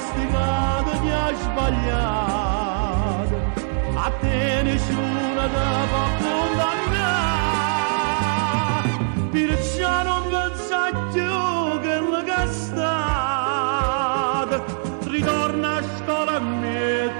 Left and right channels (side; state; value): left; silent; digital silence